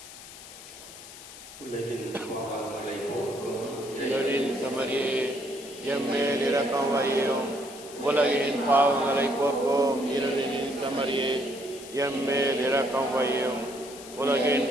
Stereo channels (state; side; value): noise; left; hiss, 16 dB below the sound